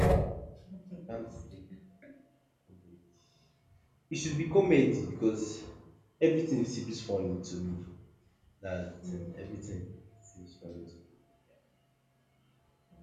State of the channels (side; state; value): both; identical; correlation 1.00